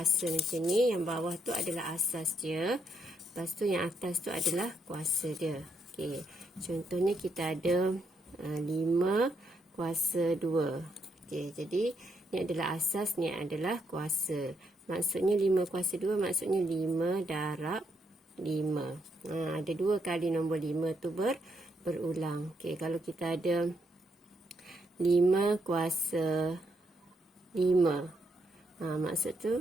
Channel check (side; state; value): both; normal; correlation 0.77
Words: macam ni, yang bawah tu adalah asas dia. Lepas tu yang atas tu adalah kuasa dia. Okey, contohnya kita ada 5 kuasa 2. Okey, jadi ni adalah asas, ni adalah kuasa. Maksudnya 5 kuasa 2 maksudnya 5 darab 5. Ada 2 kali nombor 5 tu berulang. Okey, kalau kita ada 5 kuasa 5. Maksud